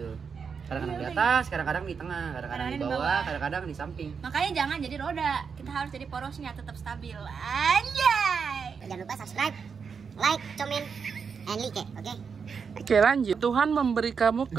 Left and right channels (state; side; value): quieter; left; 6.0 dB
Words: Kadang-kadang di atas, kadang-kadang di tengah, kadang-kadang di bawah, kadang-kadang di samping. Makanya jangan jadi roda, kita harus jadi porosnya tetap stabil. Anjay. jangan lupa subscribe, like, comment, and like, oke? Oke, lanjut. Tuhan memberi kamu